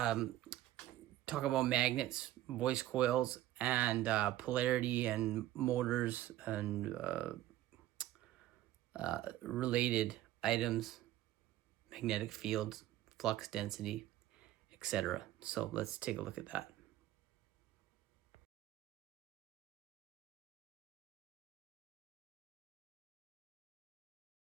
talk about magnets, voice coils, and polarity and motors and related items, magnetic fields, flux density, etc. So let's take a look at that.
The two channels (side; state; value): left; quieter; 14.4 dB